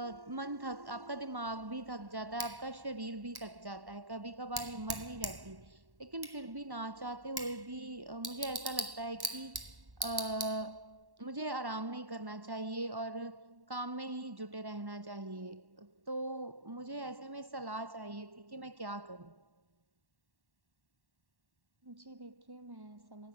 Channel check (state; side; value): late; left; 1.1 ms